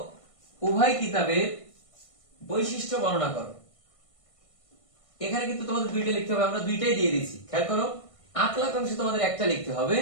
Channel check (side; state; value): right; late; 1.5 ms